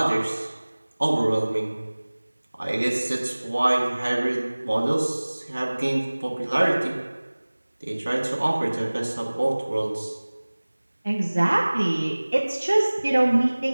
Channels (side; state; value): both; inverted; correlation -1.00